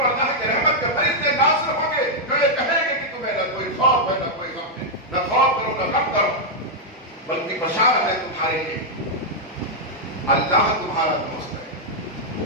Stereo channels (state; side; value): normal; both; correlation -0.04